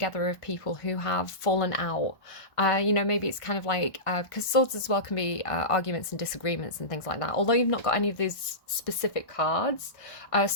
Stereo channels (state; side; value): late; right; 1.1 ms